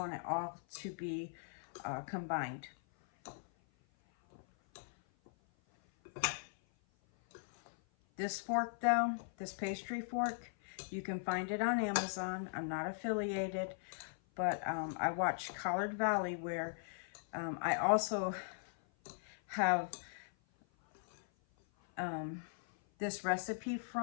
it all to be combined. This fork though, this pastry fork, you can find it on Amazon. I'm not affiliated, but I watch Collard Valley where I also have this recipe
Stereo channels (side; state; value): right; silent; 52 dB below the other